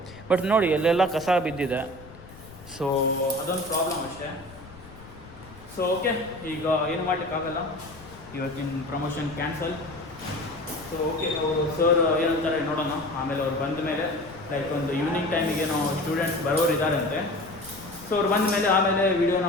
ಬಟ್ ನೋಡಿ, ಎಲ್ಲೆಲ್ಲ ಕಸ ಬಿದ್ದಿದೆ. ಸೊ ಅದೊಂದು ಪ್ರಾಬ್ಲಮ್ ಅಷ್ಟೇ. ಸೊ ಓಕೆ, ಈಗ ಏನು ಮಾಡಲಿಕ್ಕಾಗಲ್ಲ, ಇವತ್ತಿನ ಪ್ರಮೋಷನ್ ಕ್ಯಾನ್ಸಲ್. ಸೊ ಓಕೆ, ಅವರು ಸರ್ ಏನಂತಾರೆ ನೋಡೋಣ. ಆಮೇಲೆ ಅವ್ರು ಬಂದ ಮೇಲೆ, ಲೈಕ್ ಒಂದು ಈವ್ನಿಂಗ್ ಟೈಮಿಗೆ ಏನೋ ಸ್ಟೂಡೆಂಟ್ಸ್ ಬರೋರು ಇದ್ದಾರಂತೆ. ಸೊ ಅವ್ರು ಬಂದ ಮೇಲೆ ಆಮೇಲೆ ವೀಡಿಯೋನ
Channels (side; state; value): left; noise; rumble, 19 dB below the sound